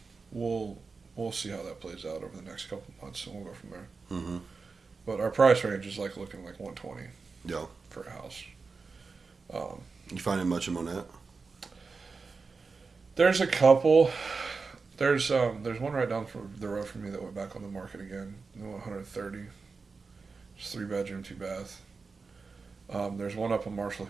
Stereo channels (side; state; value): left; quieter; 4.5 dB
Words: we'll see how that plays out over the next couple of months, and we'll go from there. Mm-hmm. But our price range is like looking like 120. Yeah. For a house. You finding much in Monette? There's a couple. There's one right down the road from me that went back on the market again. 130. It's 3-bedroom, 2-bath. There's one up on Marshall